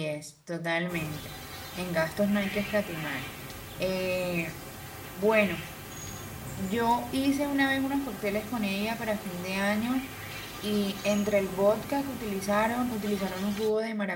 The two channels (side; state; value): both; identical; correlation 1.00